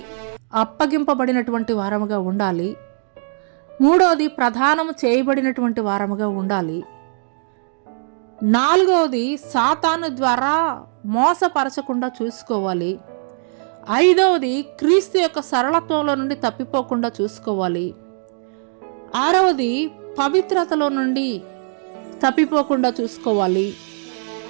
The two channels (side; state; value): left; silent; digital silence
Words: అప్పగింపబడినటువంటి వారముగా ఉండాలి. 3వది, ప్రధానము చేయబడినటువంటి వారముగా ఉండాలి. 4వది, సాతాను ద్వారా మోసపరచకుండా చూసుకోవాలి. 5వది, క్రీస్తు యొక్క సరళత్వంలో నుండి తప్పిపోకుండా చూసుకోవాలి. 6వది, పవిత్రతలో నుండి తప్పిపోకుండా చూసుకోవాలి.